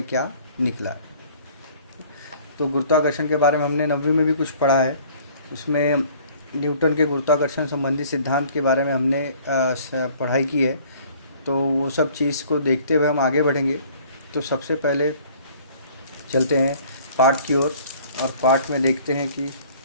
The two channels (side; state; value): both; inverted; correlation -0.54